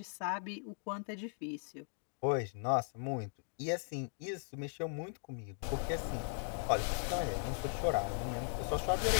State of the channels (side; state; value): right; silent; 52 dB below the other